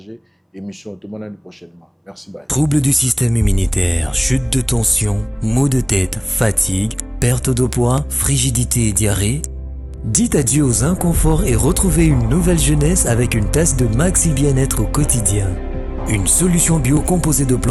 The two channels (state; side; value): identical; both; correlation 1.00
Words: émission tout le monde prochainement. Merci bye. Troubles du système immunitaire, chute de tension, maux de tête, fatigue, perte de poids, frigidité et diarrhée. Dites adieu aux inconforts et retrouvez une nouvelle jeunesse avec une tasse de Maxi Bien-être au quotidien. Une solution bio composée de